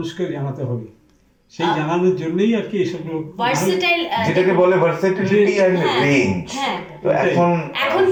জানাতে হবে, সেই জানানোর জন্যই আর কি এসব ভার্সেটাইল, যেটাকে বলে ভার্সেটিলিটি এন্ড রেঞ্জ। তো এখন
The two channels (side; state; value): both; identical; correlation 1.00